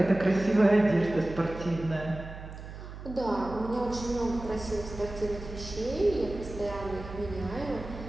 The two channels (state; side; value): noise; right; hum, 12 dB below the sound